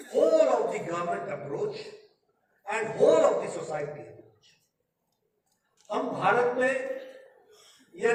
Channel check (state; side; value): identical; both; correlation 1.00